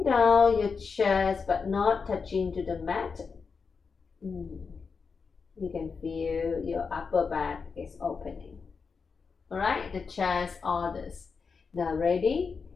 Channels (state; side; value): quieter; right; 5.3 dB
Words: down your chest but not touching to the mat. You can feel your upper back is opening. All right, the chest, all this. Now ready?